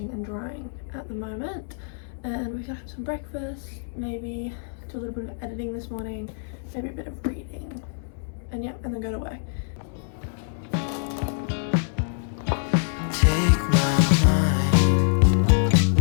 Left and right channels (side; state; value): right; silent; 62 dB below the other